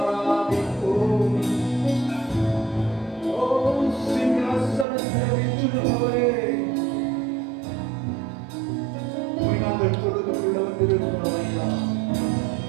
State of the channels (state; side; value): drops out; left; at 4.9 s